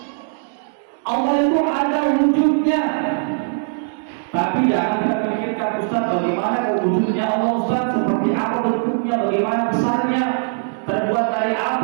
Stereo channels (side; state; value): left; silent; digital silence